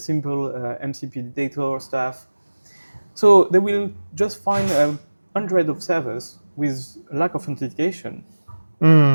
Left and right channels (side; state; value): both; inverted; correlation -1.00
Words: MCP detector stuff. So they will just find 100 of servers with lack of authentication,